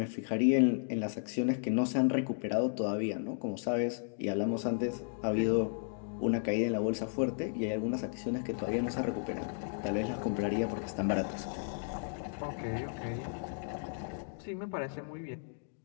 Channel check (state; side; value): silent; right; digital silence